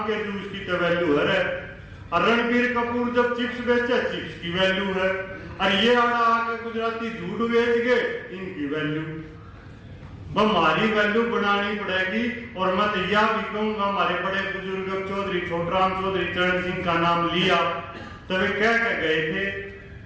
के जूस की तो वैल्यू है। और रणबीर कपूर जब चिप्स बेचे, चिप्स की वैल्यू है। और ये आके गुजराती झूठ बेच गए, इनकी वैल्यू। हमारी वैल्यू बनानी पड़ेगी। और मैं तो यह भी कहूंगा, हमारे बड़े बुजुर्ग चौधरी छोटराम चौधरी चरण सिंह का नाम लिया तो वे कह के गए थे,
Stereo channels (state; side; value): identical; both; correlation 1.00